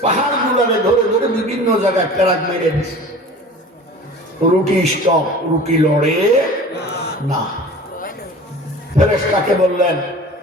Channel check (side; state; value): both; normal; correlation 0.40